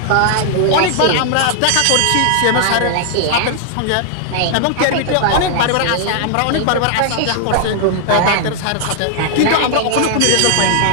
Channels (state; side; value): different; both; correlation 0.00